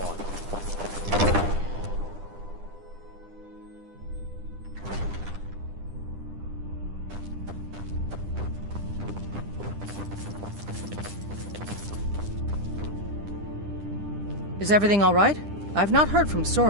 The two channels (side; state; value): left; late; 10 ms